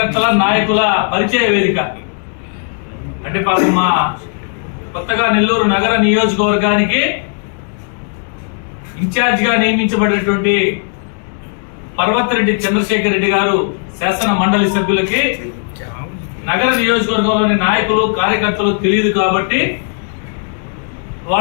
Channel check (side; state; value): right; silent; 55 dB below the other